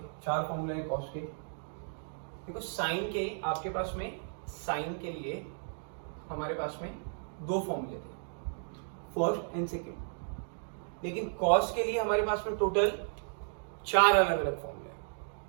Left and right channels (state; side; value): silent; left; digital silence